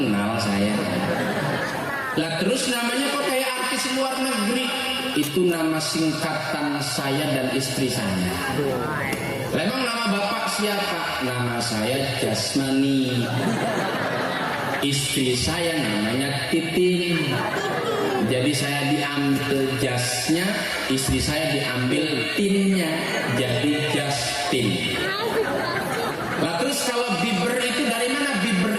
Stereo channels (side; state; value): both; identical; correlation 1.00